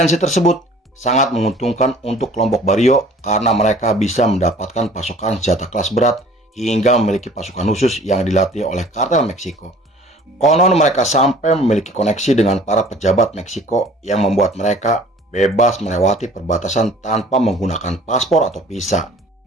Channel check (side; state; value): both; normal; correlation 0.50